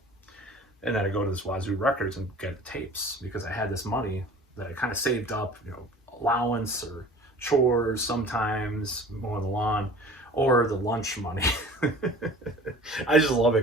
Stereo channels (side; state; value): both; normal; correlation 0.44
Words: And then I'd go to this Wazoo Records and get tapes because I had this money that I kind of saved up, allowance or chores sometimes, mowing the lawn, or the lunch money. I just love it